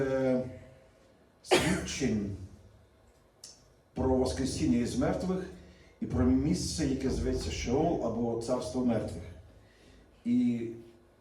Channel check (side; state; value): both; identical; correlation 1.00